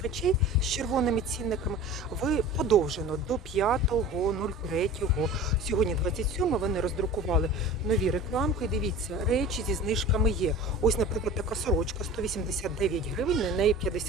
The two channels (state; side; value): normal; both; correlation 0.39